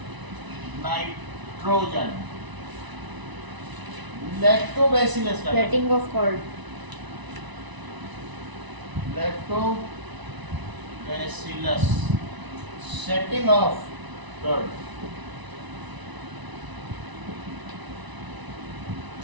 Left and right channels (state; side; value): late; left; 1.0 ms